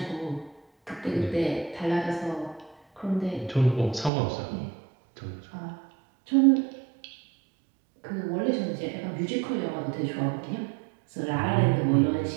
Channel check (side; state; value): left; drops out; at 4.1 s